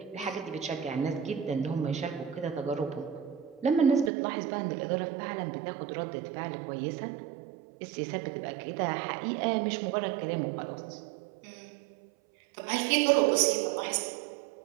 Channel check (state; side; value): drops out; left; at 4.1 s